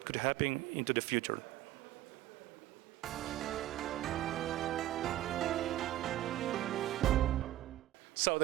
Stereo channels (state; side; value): quieter; left; 14.2 dB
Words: could happen into the future. So